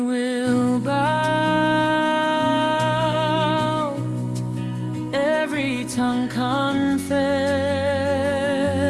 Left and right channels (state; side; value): identical; both; correlation 1.00